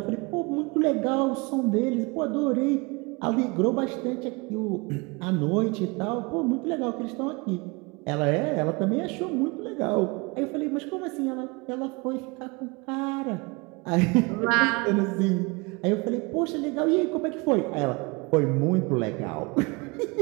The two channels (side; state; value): left; quieter; 27.4 dB